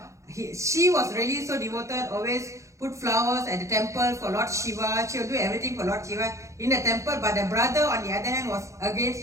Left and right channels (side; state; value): left; late; 0.15 ms